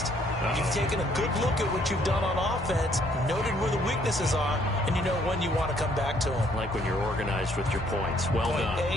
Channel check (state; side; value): normal; both; correlation 0.65